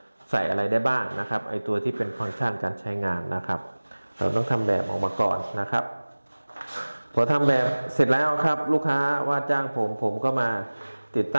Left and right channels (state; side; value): inverted; both; correlation -1.00